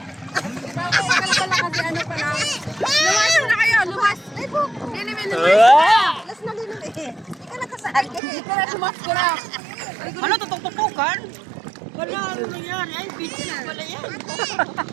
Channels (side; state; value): left; drops out; at 8.2 s